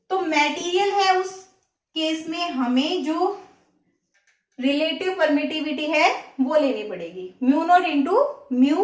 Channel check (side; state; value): both; identical; correlation 1.00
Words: तो मटेरियल है उस केस में हमें जो रिलेटिव परमिटिविटी है वो लेनी पड़ेगी, mu naught into mu